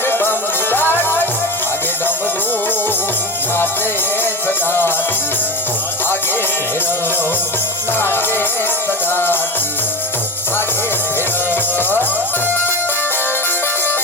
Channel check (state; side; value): normal; both; correlation 0.26